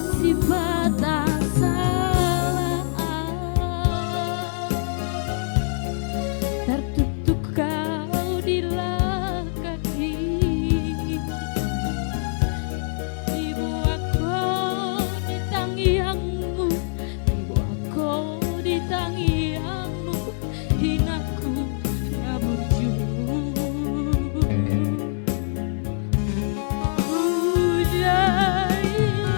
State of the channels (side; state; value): right; silent; digital silence